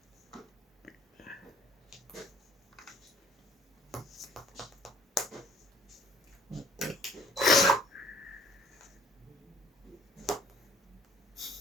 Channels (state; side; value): normal; both; correlation 0.56